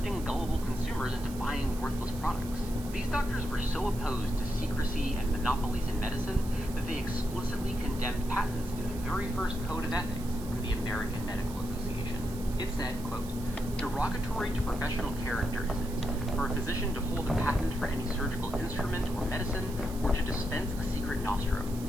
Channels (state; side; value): noise; right; hiss, 16 dB below the sound